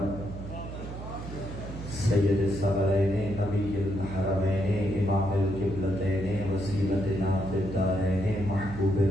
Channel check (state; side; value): noise; right; hum, 10 dB below the sound